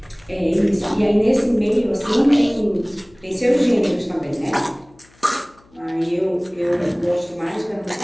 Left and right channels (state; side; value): noise; left; hum, 30 dB below the sound